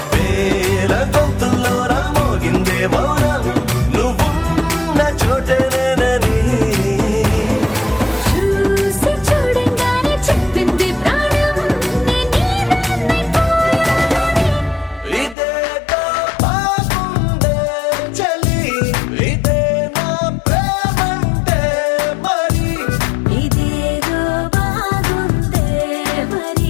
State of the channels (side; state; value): right; drops out; at 15.4 s